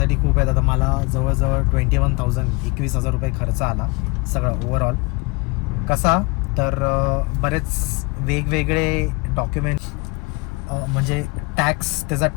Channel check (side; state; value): right; quieter; 27.2 dB